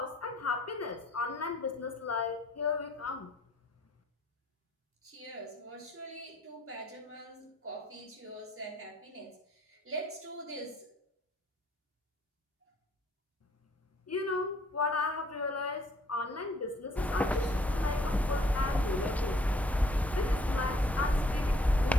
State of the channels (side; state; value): both; normal; correlation 0.63